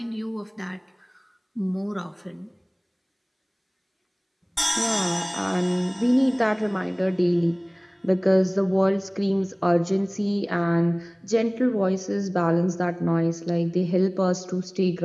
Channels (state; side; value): identical; both; correlation 1.00